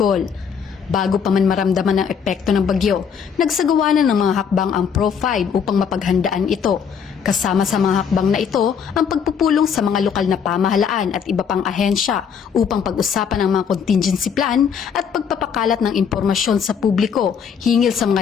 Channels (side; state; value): right; quieter; 7.1 dB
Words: Bago pa man maramdaman ang epekto ng bagyo, nagsagawa na ng mga hakbang ang Pro-5 upang mapaghandaan ito. Kasama sa mga hakbang na ito ang pagpupulong sa mga lokal na pamahalaan at iba pang ahensya upang pag-usapan ang mga contingency plan at pagpapakalat ng impormasyon sa publiko hinggil sa